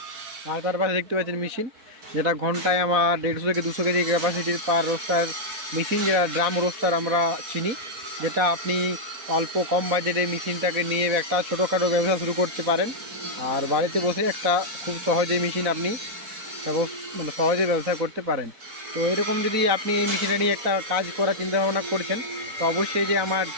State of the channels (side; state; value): left; late; 4.1 ms